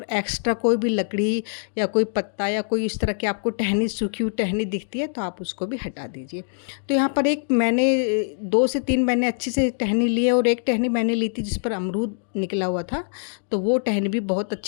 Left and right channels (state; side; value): silent; right; digital silence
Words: एक्स्ट्रा कोई भी लकड़ी या कोई पत्ता या कोई इस तरह की आपको टहनी, सूखी हुई टहनी दिखती है, तो आप उसको भी हटा दीजिए। तो यहाँ पर एक मैंने 2 से 3 मैंने अच्छी से टहनी ली है, और एक टहनी मैंने ली थी जिस पर अमरूद निकला हुआ था। तो वो टहनी भी बहुत